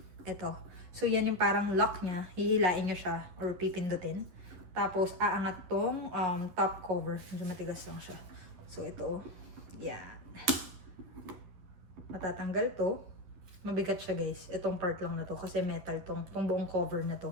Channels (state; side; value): late; left; 11 ms